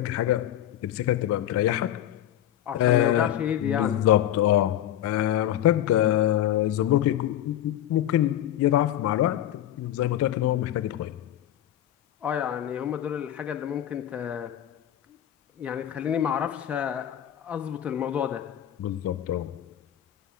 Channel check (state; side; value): quieter; right; 11.8 dB